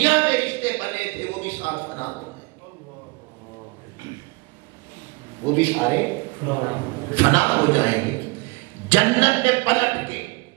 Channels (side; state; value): left; quieter; 26.7 dB